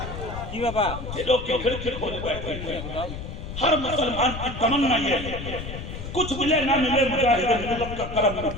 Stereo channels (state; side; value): noise; left; rumble, 8 dB below the sound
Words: दिलों की खिड़की खोले बैठे। हर मुसलमान की तमन्ना ये है, कुछ मिले ना मिले मुजाहिद मिल्लत का करम